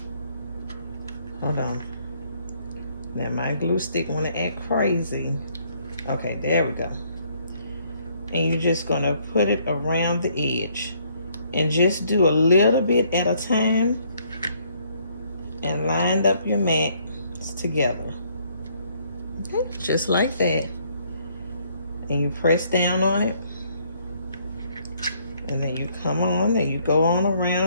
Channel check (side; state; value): both; inverted; correlation -0.67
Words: Hold on. Now my glue stick want to act crazy. Okay, there we go. And you're just going to put it around the edge and just do a little bit at a time and line up your mats together. Okay, just like that. And you press down on it, and then you come on and you go on